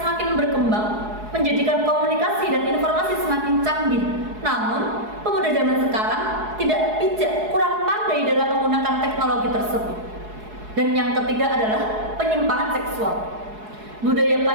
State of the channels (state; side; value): late; left; 4.7 ms